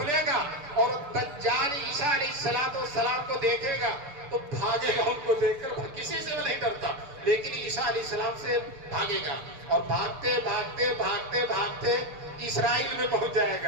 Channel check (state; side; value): late; left; 6.8 ms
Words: گا اور دجال عیسیٰ علیہ السلام کو دیکھے گا تو بھاگے گا، ان کو دیکھ کر کسی سے وہ نہیں ڈرتا، لیکن عیسیٰ علیہ السلام سے بھاگے گا، اور بھاگتے بھاگتے بھاگتے بھاگتے اسرائیل میں پہنچ جائے